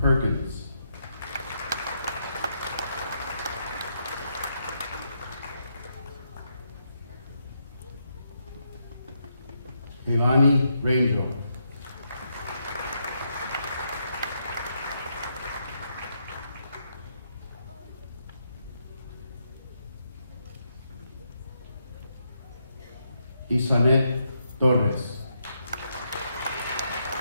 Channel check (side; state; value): both; inverted; correlation -0.79